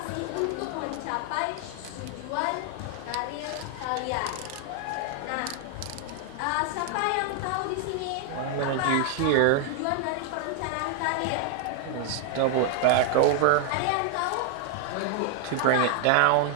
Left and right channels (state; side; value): different; both; correlation 0.00